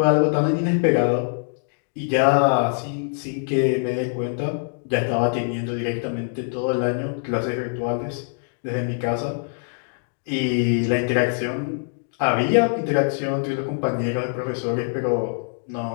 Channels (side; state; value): right; silent; digital silence